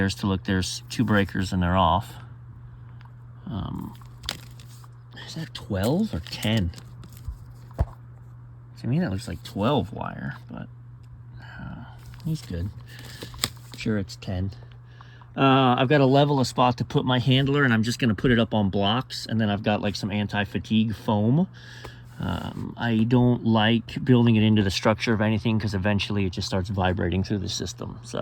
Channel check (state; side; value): identical; both; correlation 1.00